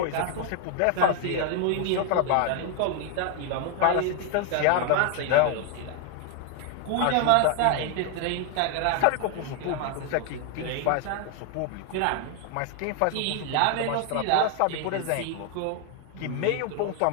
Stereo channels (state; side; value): different; both; correlation 0.00